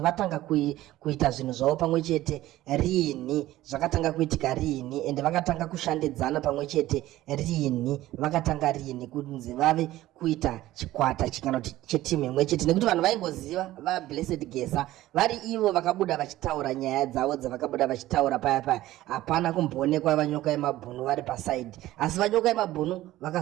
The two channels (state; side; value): quieter; left; 15.6 dB